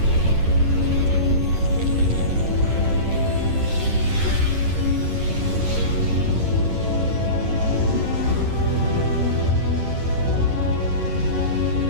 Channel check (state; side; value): late; left; 9.7 ms